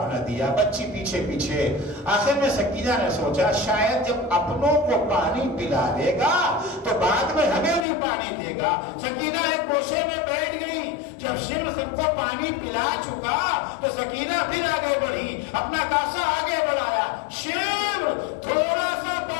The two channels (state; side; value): drops out; right; at 7.9 s